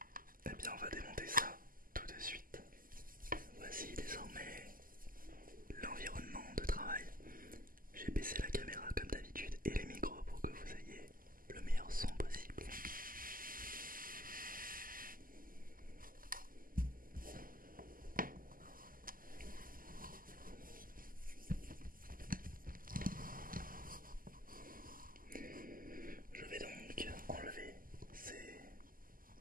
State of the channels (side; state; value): left; late; 0.41 ms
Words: eh bien on va démonter ça tout de suite. Voici désormais l'environnement de travail. J'ai baissé la caméra comme d'habitude et les micros pour que vous ayez le meilleur son possible. Je vais donc enlever